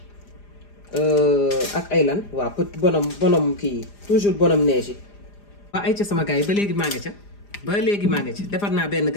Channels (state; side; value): late; right; 4.9 ms